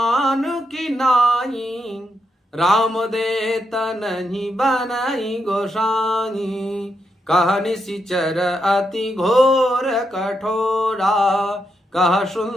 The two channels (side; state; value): both; normal; correlation 0.82